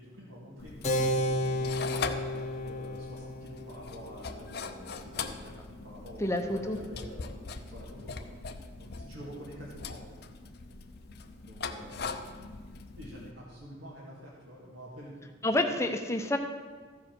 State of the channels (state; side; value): normal; both; correlation 0.30